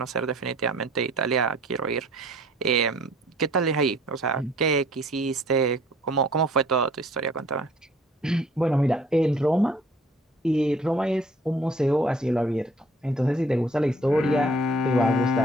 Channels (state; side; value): normal; both; correlation 0.55